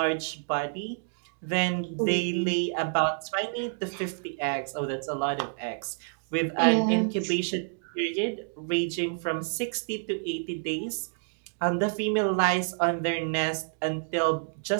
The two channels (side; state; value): left; silent; digital silence